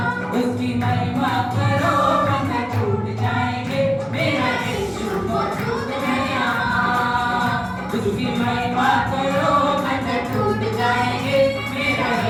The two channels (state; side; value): identical; both; correlation 1.00